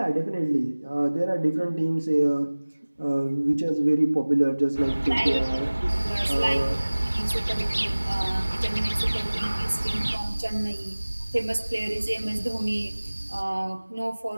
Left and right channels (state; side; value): inverted; both; correlation -1.00